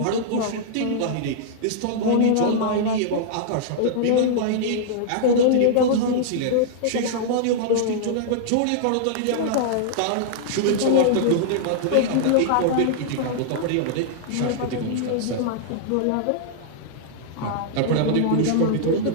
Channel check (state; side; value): different; both; correlation -0.01